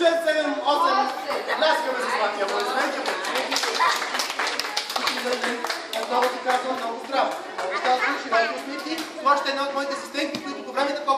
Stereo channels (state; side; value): identical; both; correlation 1.00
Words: 7, 8. Ляскаме с Злати, аплодисменти. Отново ти казвам много здраво. Разказвам, широки усмивки. Това ще е една от моите асистентки, които по време на